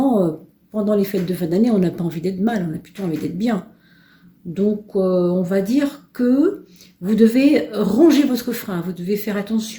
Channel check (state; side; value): identical; both; correlation 1.00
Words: pendant les fêtes de fin d'année, on n'a pas envie d'être mal, on a plutôt envie d'être bien. Donc, on va dire que vous devez ronger votre frein, vous devez faire